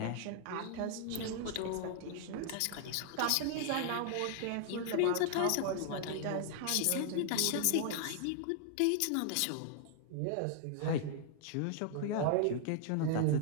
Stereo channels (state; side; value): different; both; correlation -0.01